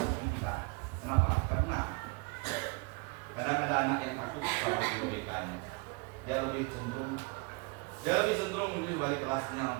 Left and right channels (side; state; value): left; quieter; 28.9 dB